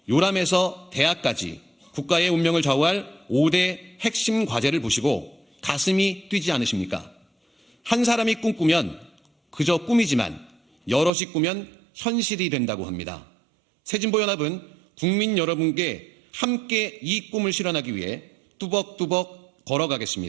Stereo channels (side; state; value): left; drops out; at 11.1 s